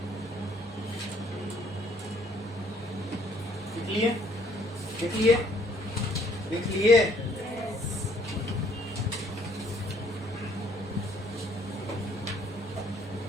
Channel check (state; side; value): normal; both; correlation 0.64